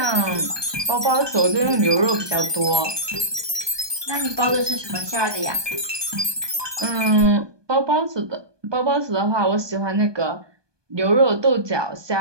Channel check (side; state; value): left; late; 1.2 ms